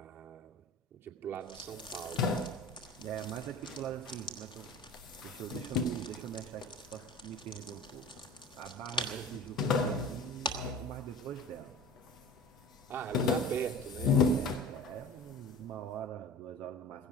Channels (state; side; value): normal; both; correlation 0.37